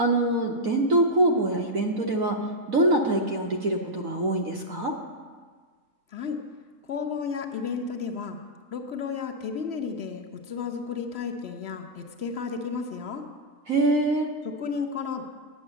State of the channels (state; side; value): late; left; 4.0 ms